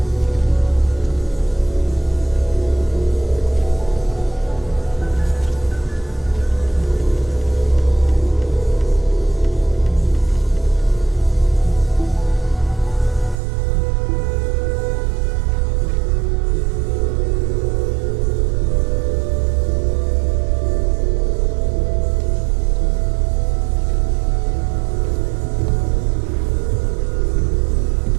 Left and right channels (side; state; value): left; drops out; at 13.4 s